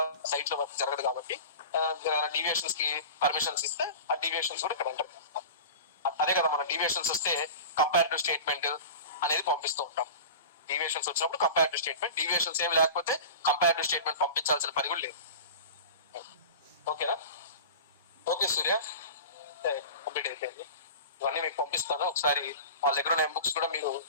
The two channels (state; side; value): inverted; both; correlation -0.33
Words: సైట్ లో వర్క్ జరగదు కాబట్టి డీవియేషన్స్ కి పర్మిషన్స్ ఇస్తే ఆ డీవియేషన్స్ కూడా ఇక్కడ ఎంటర్ చేస్తాం. అదే కదా మన డీవియేషన్స్ వస్తే కంపారిటివ్ స్టేట్మెంట్ అనేది పంపిస్తూ ఉంటాం. డీవియేషన్స్ వచ్చినప్పుడు కంపారిటివ్ స్టేట్మెంట్, డీవియేషన్స్ ఏమి లేకపోతే కంపారిటివ్ స్టేట్మెంట్ పంపించాల్సిన పని కూడా లేదు. ఓకేనా? ఓకే సూర్య, కంప్లీట్ అయిపోయింది. ఇవన్నీ మీకు పంపిస్తాను. ఒకసారి వాళ్ళ దగ్గర ఉన్న బుక్స్ కూడా మీరు